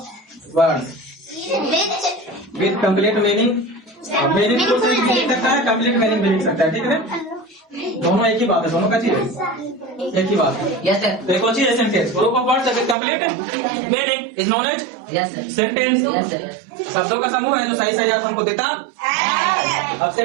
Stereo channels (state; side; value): drops out; left; at 13.0 s